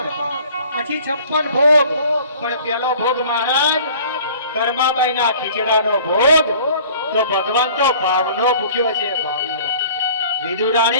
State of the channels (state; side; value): inverted; both; correlation -0.49